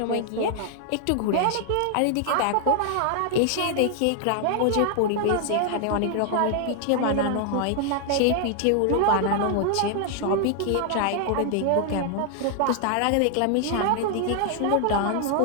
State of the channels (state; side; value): different; both; correlation 0.00